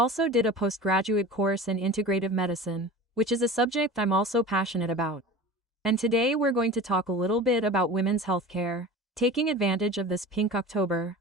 did a postgraduate course in integrative medicine, which is a subject I'm also passionate about. And today we're going to talk a little bit about women's healthcare, taking advantage of this Pink October,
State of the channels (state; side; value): normal; both; correlation 0.35